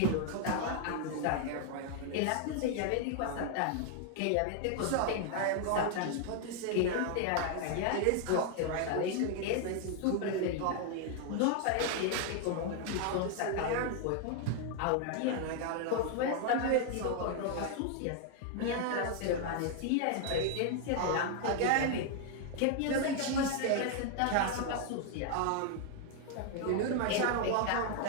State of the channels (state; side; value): different; both; correlation 0.00